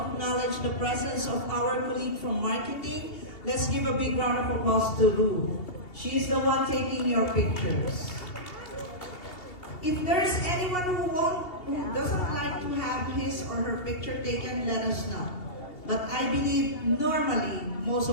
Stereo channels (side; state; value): right; late; 2.7 ms